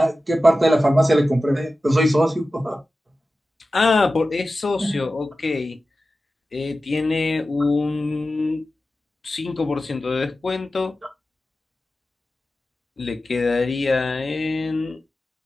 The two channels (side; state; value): both; normal; correlation 0.94